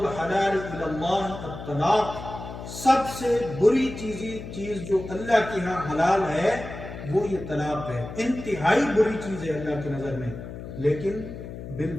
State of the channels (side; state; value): left; noise; hum, 10 dB below the sound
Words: الی اللہ الطلاق، سب سے بری چیز جو اللہ کے ہاں حلال ہے وہ یہ طلاق ہے، انتہائی بری چیز ہے اللہ کی نظر میں۔ لیکن